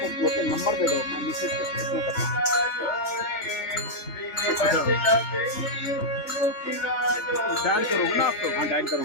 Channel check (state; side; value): late; right; 3.4 ms